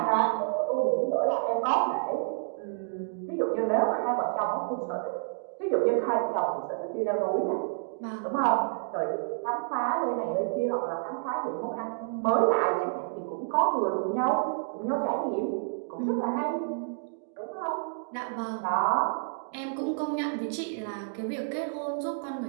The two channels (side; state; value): left; silent; digital silence